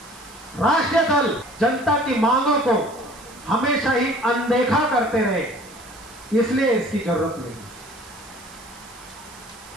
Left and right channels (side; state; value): right; noise; hiss, 21 dB below the sound